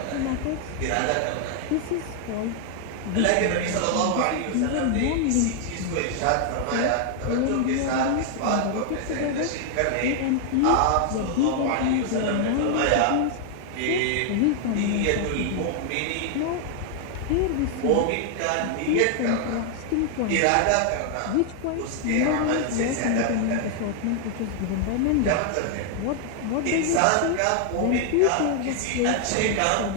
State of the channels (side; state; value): both; different; correlation 0.00